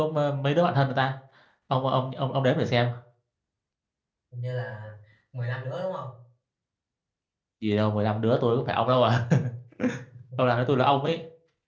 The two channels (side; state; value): both; identical; correlation 1.00